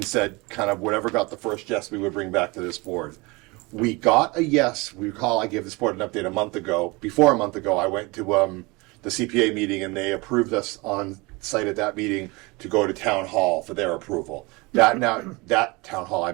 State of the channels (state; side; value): quieter; left; 25.3 dB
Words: said kind of whatever got the first yes, we would bring back to this board. We got a yes. We recall I gave this board an update a month ago. Before a month ago, I went to the CPA meeting and they approved us on site at that meeting to go to town hall for their approval. That town hall, I